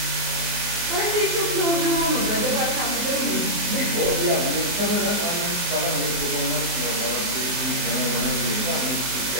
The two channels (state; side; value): late; left; 24 ms